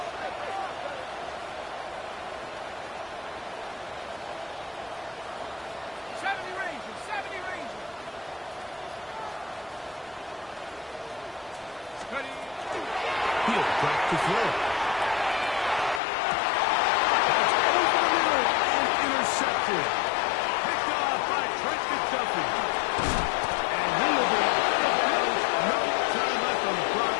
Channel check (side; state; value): right; drops out; at 16.0 s